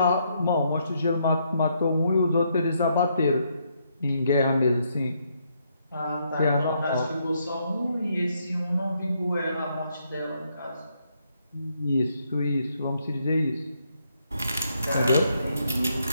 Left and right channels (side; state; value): both; inverted; correlation -0.75